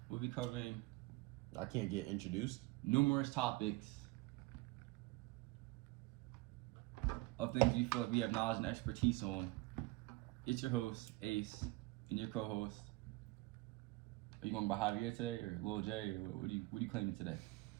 we'll be covering I can't get introduced. numerous topics of things we feel like we have knowledge and expertise on. It's your host, Ace, and your co-host. Are you going by Javier today, or Lil J, or what are you claiming today?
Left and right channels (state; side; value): quieter; left; 21.2 dB